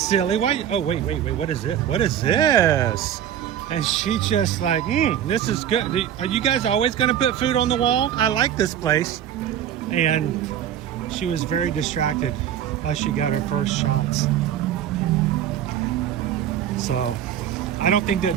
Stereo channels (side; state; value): left; quieter; 10.2 dB